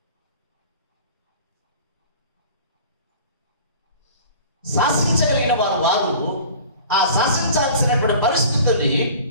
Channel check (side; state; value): both; inverted; correlation -0.43